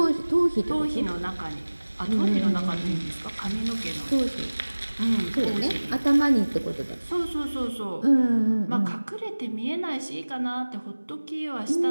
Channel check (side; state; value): both; inverted; correlation -1.00